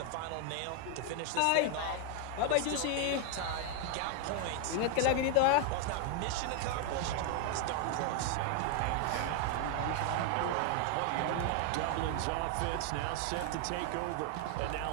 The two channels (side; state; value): both; different; correlation 0.00